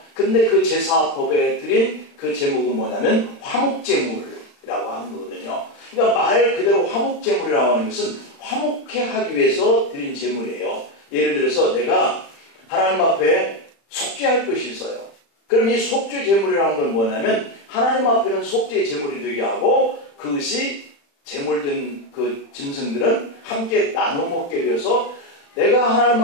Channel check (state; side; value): late; right; 35 ms